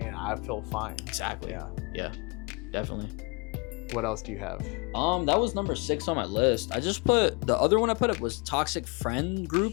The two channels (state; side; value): quieter; right; 31.2 dB